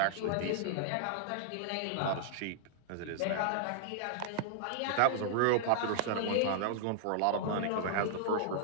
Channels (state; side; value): different; both; correlation -0.01